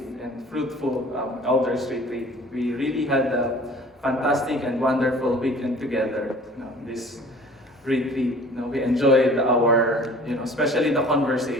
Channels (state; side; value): normal; both; correlation 0.48